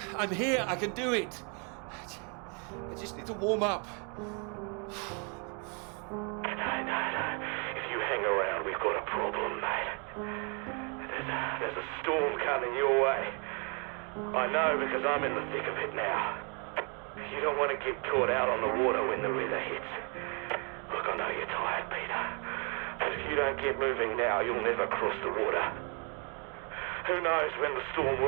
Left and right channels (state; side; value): quieter; left; 36.7 dB